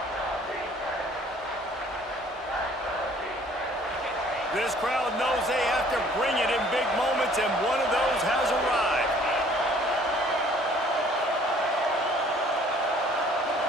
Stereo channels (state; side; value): normal; both; correlation 0.56